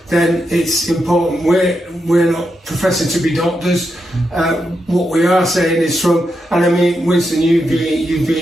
then it's important. We're not professing to be doctors. What we are saying is from, and I mean, Winston, you've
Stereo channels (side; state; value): both; normal; correlation 0.85